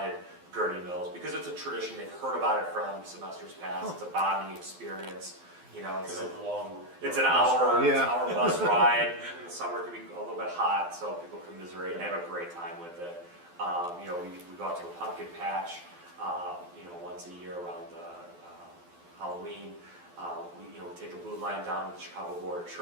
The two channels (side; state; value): left; late; 12 ms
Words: Gurney Mills because it's a tradition. They've heard about it from semesters past. It's a bonding experience. You know, it's an hour, Yeah. hour bus ride. In the summer it can be a little bit hot, so people commiserate and have a great time with it. You know, we go out to a pumpkin patch, you know, once a year around Halloween. We take the blue line down to the Chicago Board of